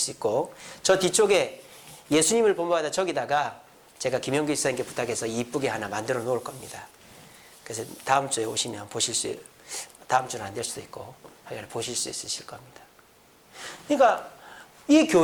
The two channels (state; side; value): identical; both; correlation 1.00